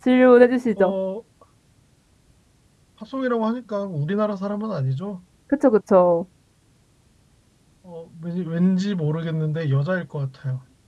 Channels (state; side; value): identical; both; correlation 1.00